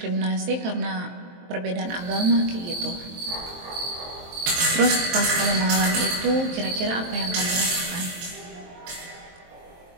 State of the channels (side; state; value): left; late; 23 ms